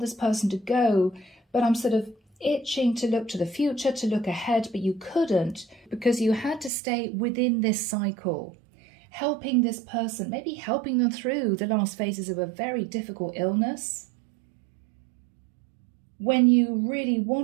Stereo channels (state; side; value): drops out; left; at 6.7 s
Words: person to go, but I'm sort of itching to look to the future, to look ahead, but you couldn't because you had to stay within this cycle, helping this person, maybe helping them through the last phases of a very difficult illness, when you really